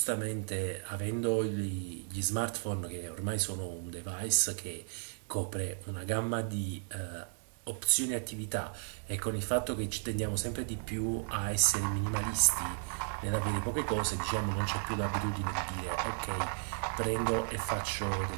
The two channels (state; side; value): silent; left; 55 dB below the other